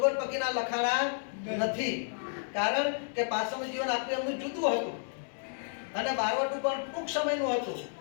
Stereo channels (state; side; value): silent; right; digital silence